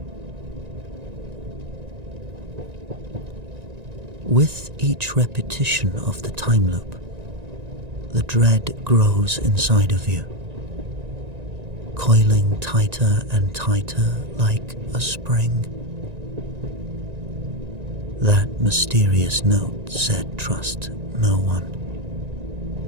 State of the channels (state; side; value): late; left; 1.9 ms